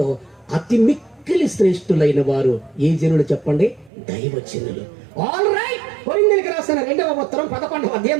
అతి మిక్కిలి శ్రేష్ఠులైన వారు ఏ జనులు చెప్పండి? దైవజనులు. All right. కొరింథీయులకు రాసిన 2వ ఉత్తరం 11వ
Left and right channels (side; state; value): left; drops out; at 3.9 s